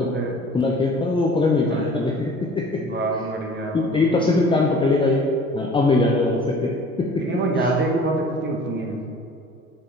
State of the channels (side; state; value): both; normal; correlation 0.48